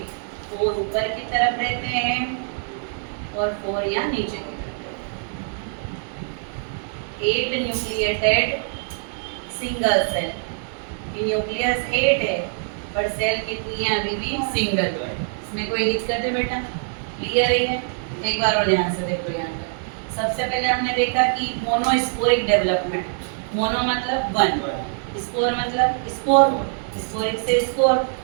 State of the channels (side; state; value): left; silent; 63 dB below the other